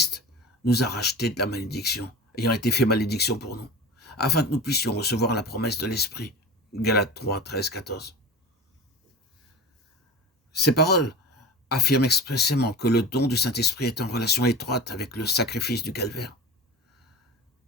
nous a rachetés de la malédiction, ayant été fait malédiction pour nous, afin que nous puissions recevoir la promesse de l'Esprit. Galates 3, 13, 14. Ces paroles affirment expressément que le don du Saint-Esprit est en relation étroite avec le sacrifice du calvaire.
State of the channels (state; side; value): normal; both; correlation 0.31